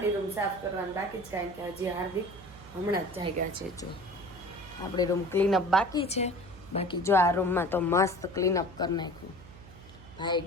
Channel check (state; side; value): noise; right; hum, 19 dB below the sound